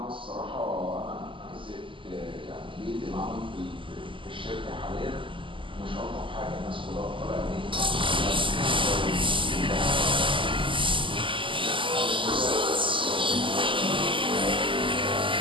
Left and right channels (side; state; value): left; late; 0.25 ms